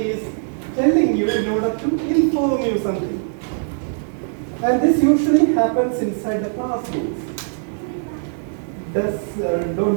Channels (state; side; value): silent; left; 65 dB below the other